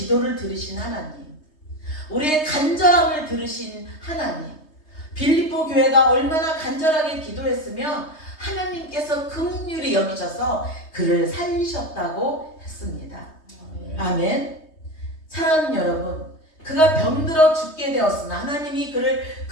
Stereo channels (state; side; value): late; right; 3.2 ms